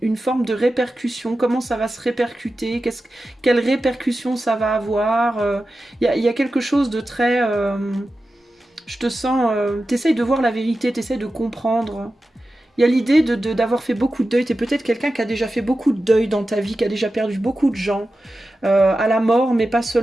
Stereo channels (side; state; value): both; normal; correlation 0.93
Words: forme de répercussion, comment ça va se répercuter, quelles répercussions ça va avoir. Il y a quelque chose de très... je te sens... t'essayes de voir la vérité, t'essayes de comprendre. Il y a l'idée d'avoir fait beaucoup de deuil. T'es peut-être quelqu'un qui a déjà fait beaucoup de deuil dans ta vie, qui a déjà perdu beaucoup de gens, à la mort, mais pas